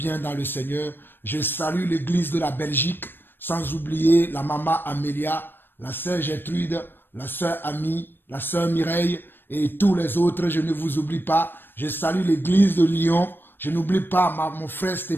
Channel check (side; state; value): right; late; 0.097 ms